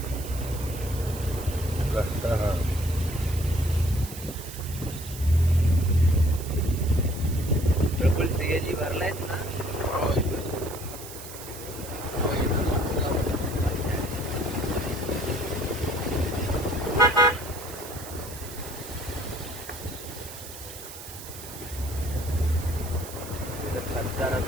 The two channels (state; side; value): noise; right; hiss, 13 dB below the sound